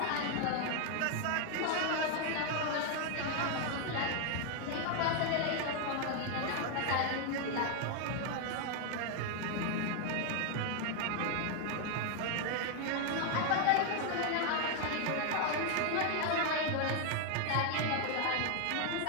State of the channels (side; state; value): both; different; correlation 0.00